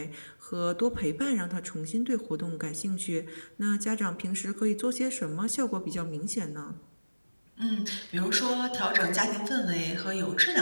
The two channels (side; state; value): both; inverted; correlation -1.00